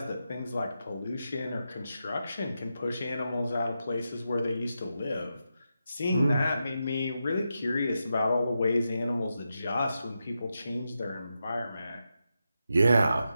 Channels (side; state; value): both; inverted; correlation -0.88